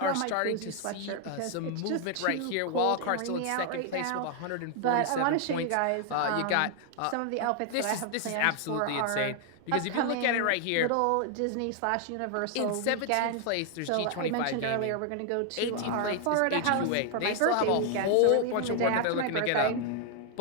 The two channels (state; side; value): different; both; correlation 0.00